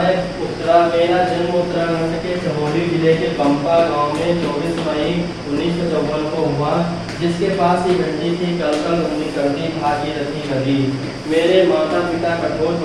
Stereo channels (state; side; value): identical; both; correlation 1.00